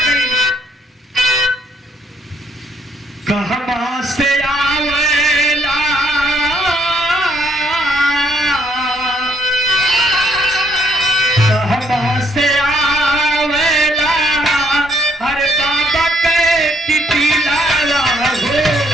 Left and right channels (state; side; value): normal; both; correlation 0.68